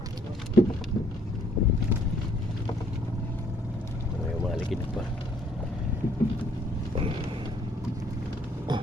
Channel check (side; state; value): both; normal; correlation 0.64